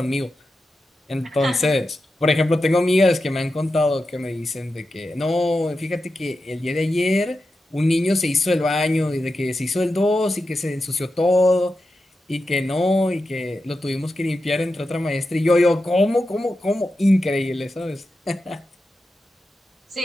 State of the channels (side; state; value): both; normal; correlation 0.90